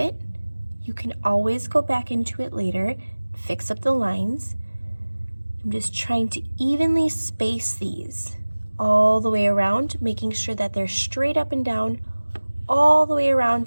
You can always go back into it later, fix up the lines. I'm just trying to evenly space these all the way around, making sure that they're straight up and down all the way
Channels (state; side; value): inverted; both; correlation -1.00